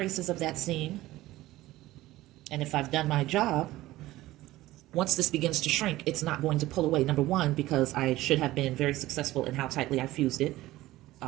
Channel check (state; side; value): quieter; left; 16.9 dB